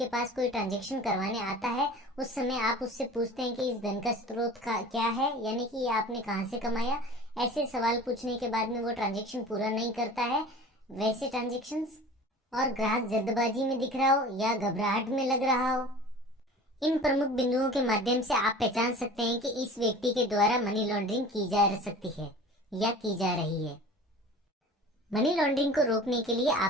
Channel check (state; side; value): normal; both; correlation 0.41